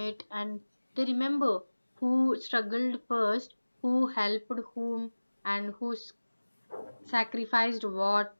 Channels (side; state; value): both; inverted; correlation -1.00